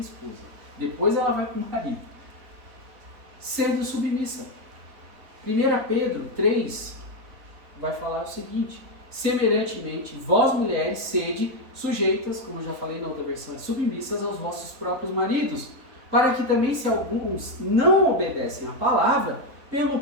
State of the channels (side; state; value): left; late; 3.7 ms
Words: Depois ela vai para o marido. Sendo submissa. 1 Pedro 3 vai falar o seguinte: semelhantemente, vós mulheres sede sujeitas, como eu já falei na outra versão, submissas aos vossos próprios maridos, para que também, se alguns não obedecem à palavra, pelo